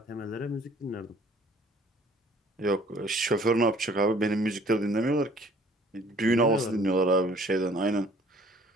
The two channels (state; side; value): normal; both; correlation 0.55